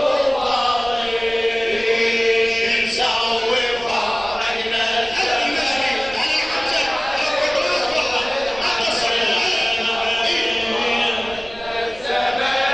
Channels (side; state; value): right; noise; rumble, 19 dB below the sound